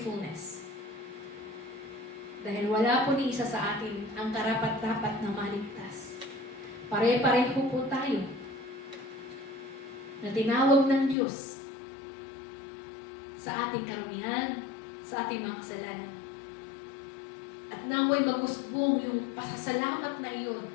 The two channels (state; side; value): drops out; right; at 11.2 s